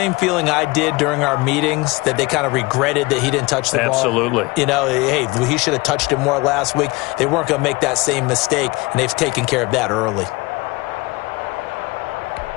feeling I did during our meetings, that they kind of regretted that he didn't touch the ball? Absolutely. You know, hey, he should have touched it more last week. They weren't going to make that same mistake, and they've taken care of that early.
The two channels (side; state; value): right; quieter; 23.4 dB